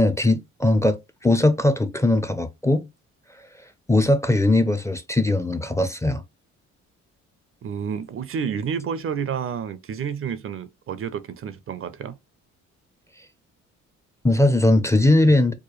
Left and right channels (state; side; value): normal; both; correlation 0.82